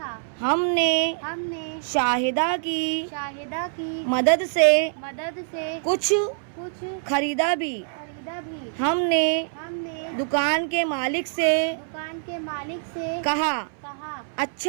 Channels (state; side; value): silent; left; 62 dB below the other